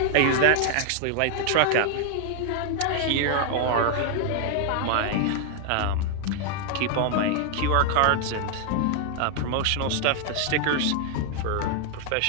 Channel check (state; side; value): different; both; correlation 0.00